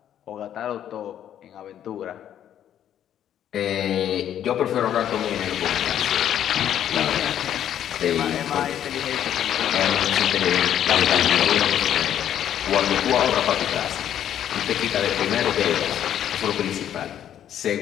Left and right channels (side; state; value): right; quieter; 10.4 dB